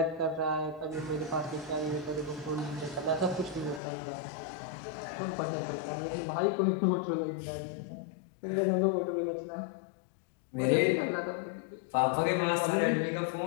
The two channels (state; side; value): drops out; right; at 3.8 s